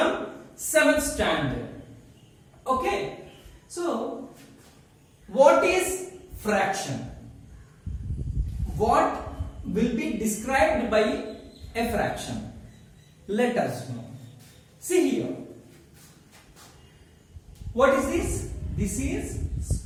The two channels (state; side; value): identical; both; correlation 1.00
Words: 7th standard. Okay, so what is fraction? What will be described by a fraction? Let us know. See here. What is this? This is